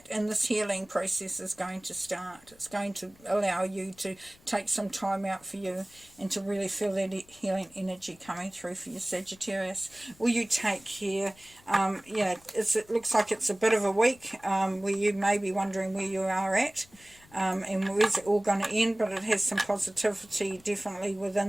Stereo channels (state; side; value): noise; left; rumble, 27 dB below the sound